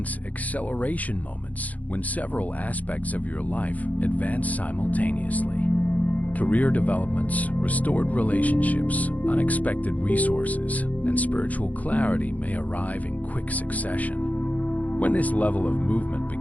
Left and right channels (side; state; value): right; late; 0.075 ms